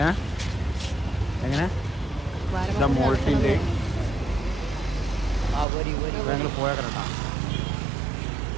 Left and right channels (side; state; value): left; drops out; at 5.7 s